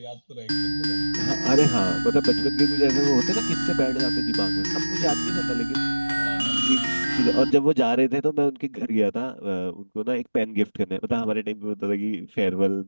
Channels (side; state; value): both; inverted; correlation -1.00